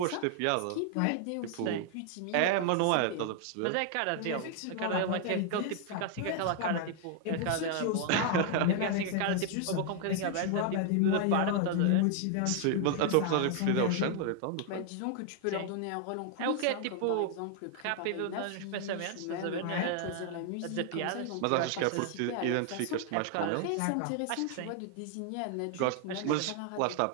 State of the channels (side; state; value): both; different; correlation 0.00